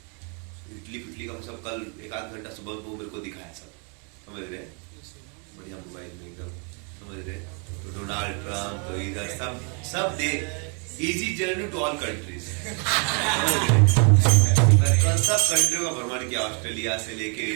इटली पिटली का सब कल 1-8 घंटा सुबह को मेरे को दिखाया सब, समझ रहे, बढ़िया मोबाइल में एकदम, समझ रहे। तो डोनाल्ड ट्रम्प तो इधर सब दे easy journey to all countries, कल सब कंट्रियों का भ्रमण किया, ऑस्ट्रेलिया से लेके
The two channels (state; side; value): quieter; left; 37.9 dB